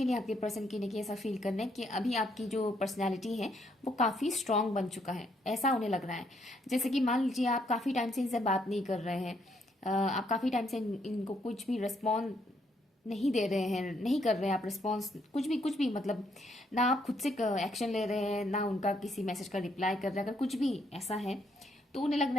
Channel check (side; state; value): both; normal; correlation 0.72